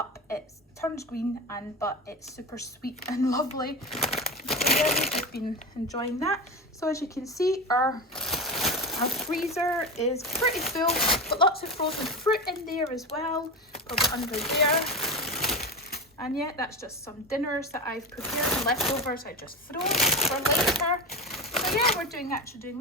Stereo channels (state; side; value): normal; both; correlation 0.23